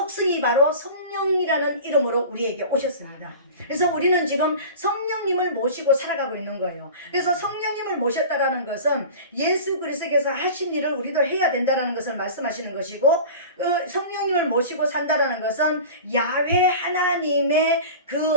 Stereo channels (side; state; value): both; inverted; correlation -0.37